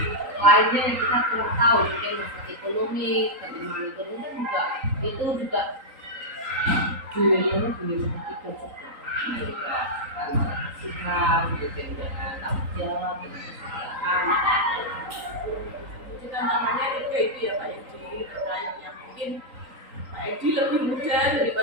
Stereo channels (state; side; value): late; left; 3.8 ms